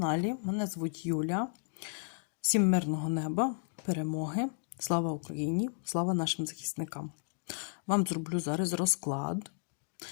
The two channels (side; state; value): right; silent; digital silence